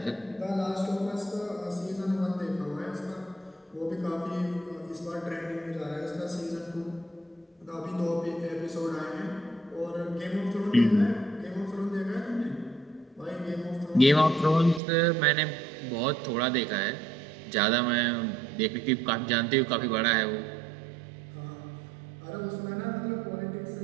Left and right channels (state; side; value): drops out; left; at 14.8 s